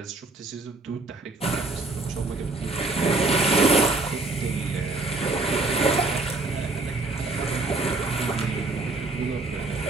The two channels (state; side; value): quieter; left; 3.2 dB